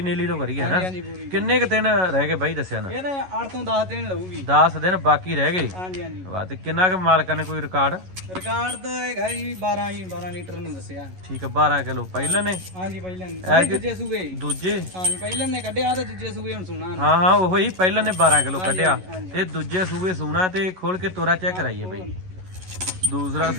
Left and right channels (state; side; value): late; left; 11 ms